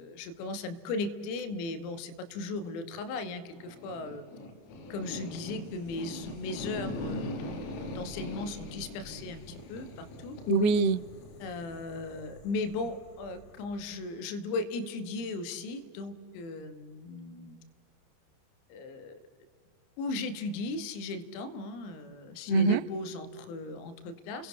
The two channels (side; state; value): right; late; 30 ms